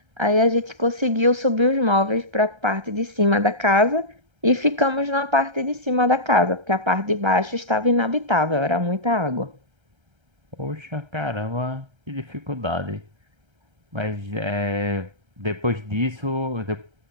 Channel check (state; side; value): late; left; 1.3 ms